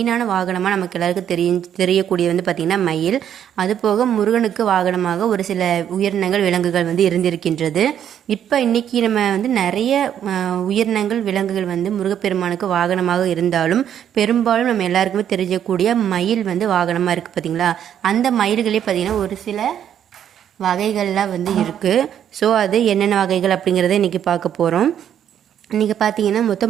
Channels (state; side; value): quieter; left; 9.6 dB